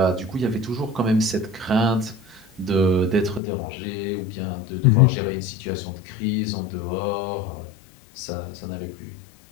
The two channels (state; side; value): drops out; right; at 3.4 s